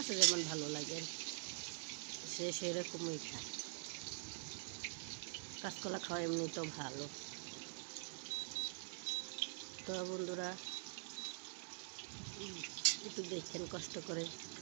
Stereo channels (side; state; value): left; silent; digital silence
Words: যেমন ভালো লাগে সে সেরকমই খায়। কাঁচকলা খাওয়া এমনি তো ভালো। তো বন্ধুরা একটু দেখেন কষ্ট করে।